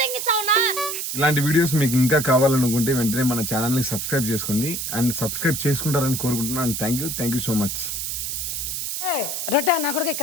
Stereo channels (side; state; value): right; noise; hiss, 3 dB below the sound